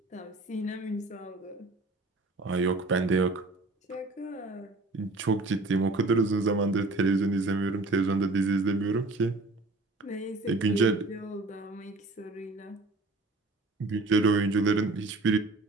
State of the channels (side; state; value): left; quieter; 3.1 dB